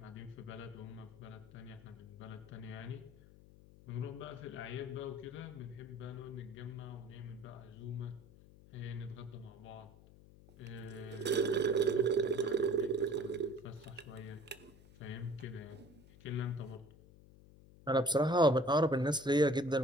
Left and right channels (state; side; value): noise; left; hum, 22 dB below the sound